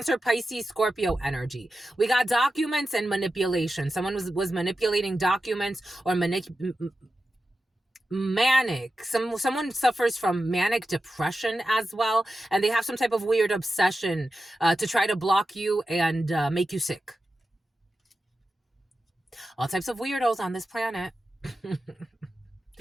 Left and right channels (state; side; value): normal; both; correlation 0.92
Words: Pisces, Scorpio energy. We got documents and manipulation. Someone was manipulating documents or manic. Someone suffers from manic depression as well, and they have some type of weird obsession to try to block you and make you sick. All types of weirdos on this planet.